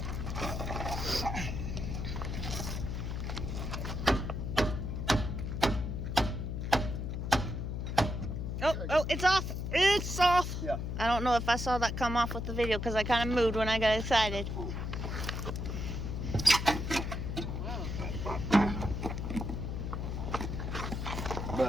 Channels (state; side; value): noise; left; hum, 3 dB below the sound